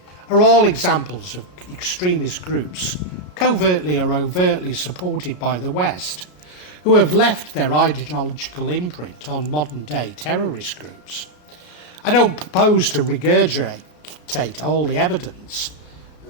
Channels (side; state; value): right; late; 33 ms